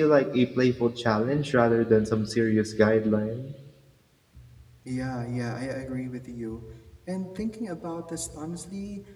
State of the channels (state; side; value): identical; both; correlation 1.00